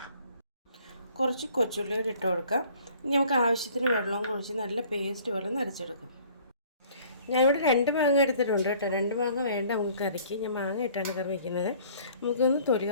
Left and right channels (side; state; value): both; inverted; correlation -0.55